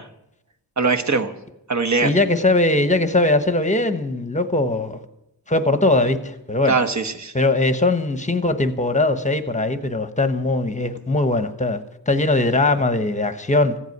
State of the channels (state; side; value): normal; both; correlation 0.20